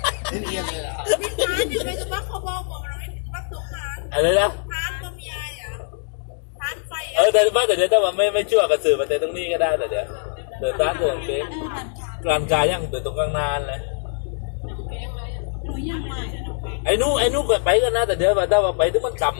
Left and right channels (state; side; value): silent; right; digital silence